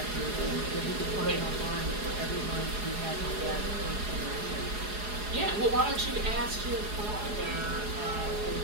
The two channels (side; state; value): left; late; 4.8 ms